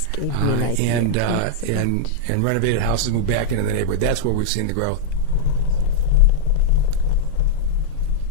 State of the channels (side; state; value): both; different; correlation -0.02